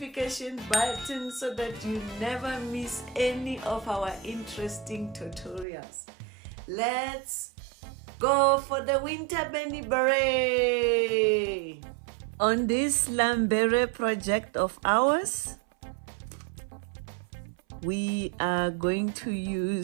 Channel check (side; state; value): left; drops out; at 5.7 s